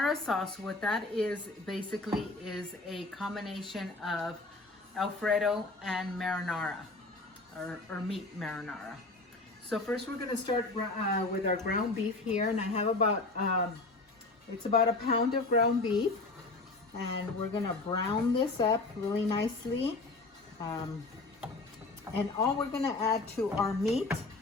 sauce, what that is basically is a combination of Alfredo and marinara, or meat marinara. So first we're going to start with our ground beef here, and I have it's about a pound of ground beef, and we're going to brown this up really nicely. And all we're going to add to our meat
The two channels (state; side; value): quieter; right; 3.3 dB